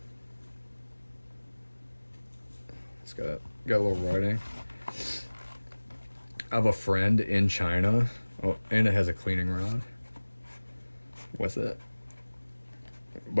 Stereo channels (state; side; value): inverted; both; correlation -1.00